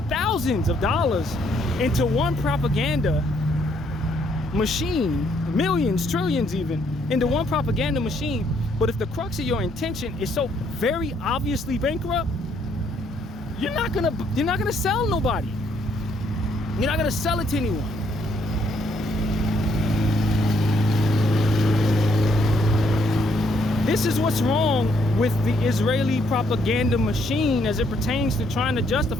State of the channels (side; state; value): both; normal; correlation 0.70